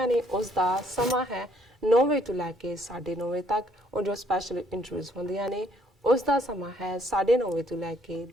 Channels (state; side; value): normal; both; correlation 0.66